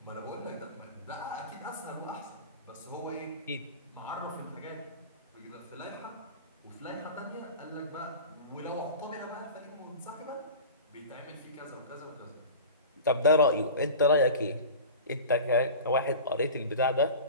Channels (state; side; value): inverted; both; correlation -0.35